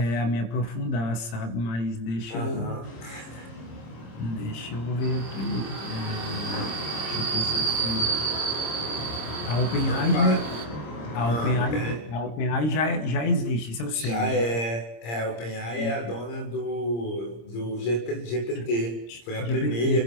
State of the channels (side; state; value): right; late; 26 ms